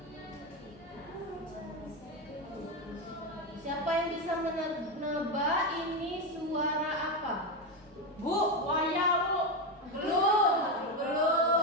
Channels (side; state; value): both; normal; correlation 0.11